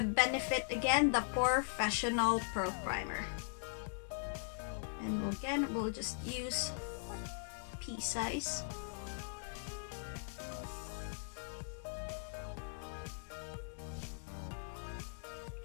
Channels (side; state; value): right; silent; digital silence